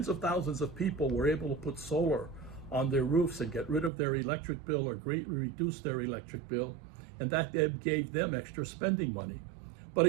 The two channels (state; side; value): drops out; left; at 3.9 s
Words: of thousands of people were able to put solar on their roofs and get rid of their electric bill or greatly reduce their electric bill. and that gave them extra spending money. But